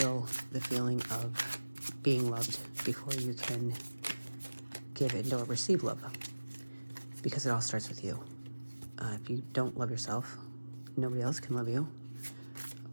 the feeling of being loved before you can give in or receive love. Because it all starts with you. If you don't love yourself, nobody else can love you.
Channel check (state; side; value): inverted; both; correlation -1.00